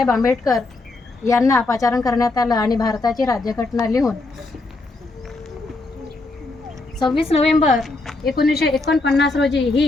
आंबेडकर यांना पाचारण करण्यात आलं आणि भारताची राज्यघटना लिहून 26 नोव्हेंबर 1949 रोजी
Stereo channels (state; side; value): quieter; right; 3.3 dB